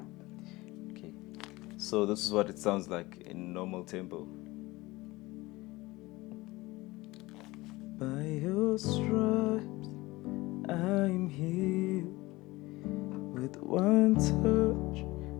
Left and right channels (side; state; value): right; quieter; 20.6 dB